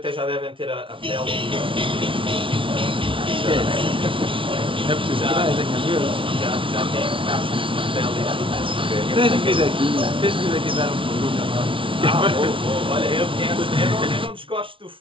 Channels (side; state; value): left; late; 0.25 ms